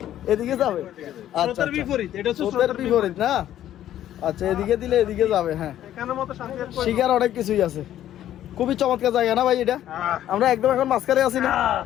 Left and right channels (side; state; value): right; quieter; 12.0 dB